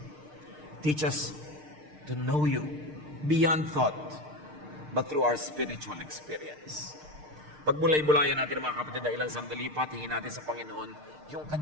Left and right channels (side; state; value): left; late; 6.6 ms